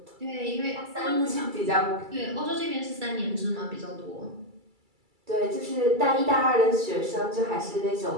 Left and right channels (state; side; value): late; left; 2.3 ms